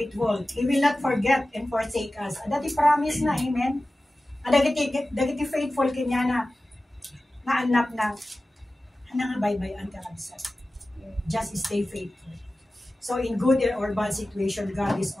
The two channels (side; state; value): both; normal; correlation 0.96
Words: He will not forget and forsake us. Dati promise na. Amen. Dagiti faithful kanya na anak na nga bye-bye ka kabsat. Just stay faithful. So in good or bad situation, God is